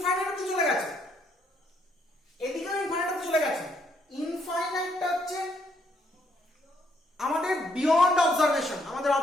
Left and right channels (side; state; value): both; normal; correlation 0.72